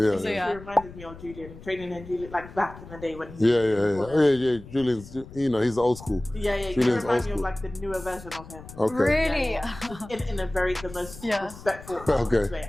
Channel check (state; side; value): noise; left; rumble, 16 dB below the sound